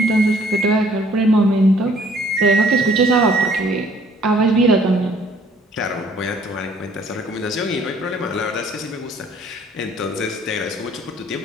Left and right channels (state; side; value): normal; both; correlation 0.59